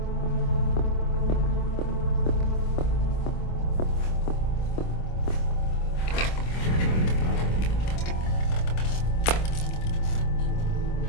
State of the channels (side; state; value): right; late; 25 ms